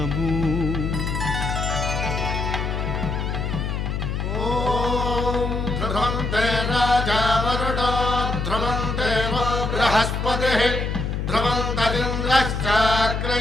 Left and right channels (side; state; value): left; noise; hum, 2 dB below the sound